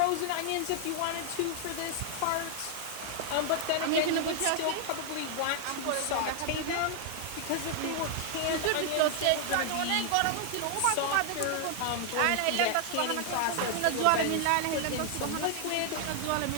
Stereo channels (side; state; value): both; different; correlation 0.00